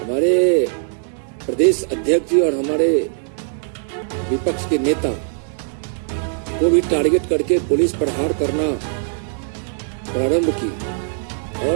प्रदेश अध्यक्ष जी और हमारे विपक्ष के नेता को भी टारगेट करके पुलिस प्रहार करना प्रारंभ की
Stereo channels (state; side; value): silent; left; 65 dB below the other